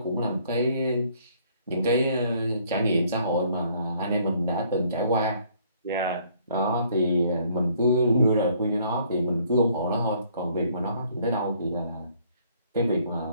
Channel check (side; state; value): both; inverted; correlation -0.63